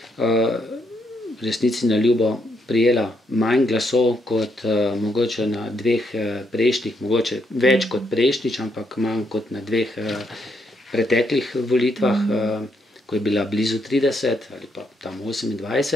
resnici na ljubo prijela manj glasov kot mogoče na 2 prejšnjih, mogoče več kot prejšnjič, ampak manj kot na 2 preteklih volitvah, ko je bila blizu 30 ali pa tam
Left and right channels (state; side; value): normal; both; correlation 0.76